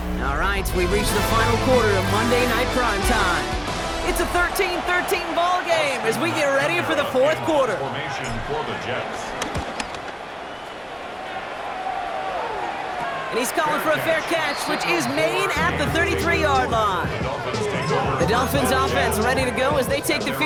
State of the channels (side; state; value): both; identical; correlation 1.00